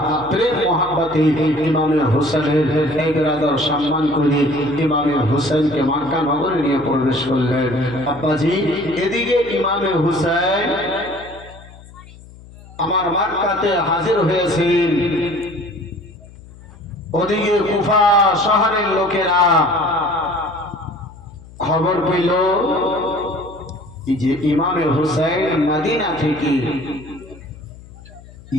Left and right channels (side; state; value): left; noise; hum, 20 dB below the sound